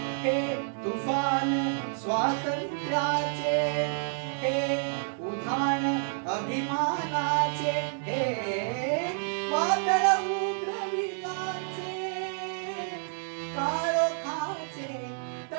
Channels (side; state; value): left; silent; 58 dB below the other